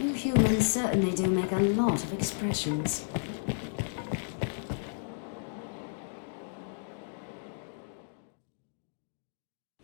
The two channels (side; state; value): right; silent; digital silence